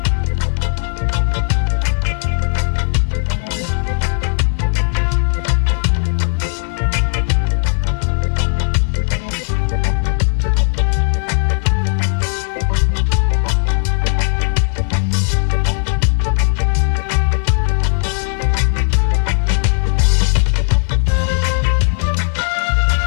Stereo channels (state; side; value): silent; right; 59 dB below the other